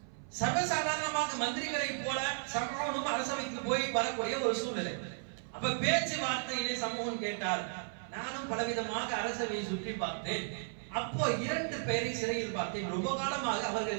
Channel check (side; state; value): left; silent; 55 dB below the other